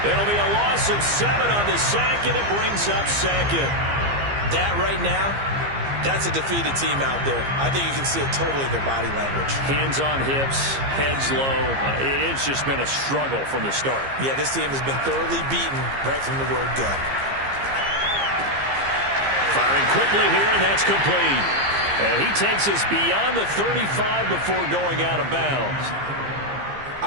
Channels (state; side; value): late; left; 15 ms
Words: It'll be a loss of 7 on the sack, and it brings up second. That right now, that's a defeated team out there. I think you can see it totally in their body language. Hands on hips, heads low. It's just been a struggle from the start. Yeah, this team has been thoroughly beaten right from the word go. Firing quickly here, and that's complete. And he takes us beyond the 35 before going out of bounds.